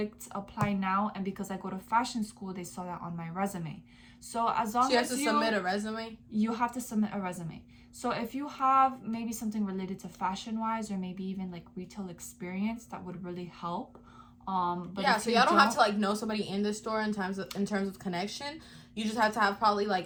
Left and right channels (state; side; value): identical; both; correlation 1.00